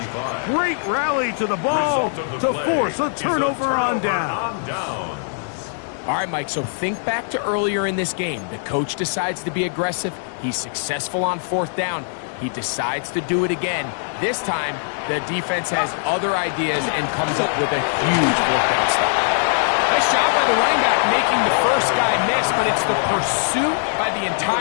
Great rally to the ball to force a turnover on down. All right, Mike, so think back to earlier in this game. The coach decides to be aggressive. He's successful on fourth down. He decides to do it again. This time, the defense has other ideas and comes up with a huge fourth down stop. Nice job by the running back making the first guy miss, but it's the pursuit by the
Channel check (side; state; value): right; silent; 65 dB below the other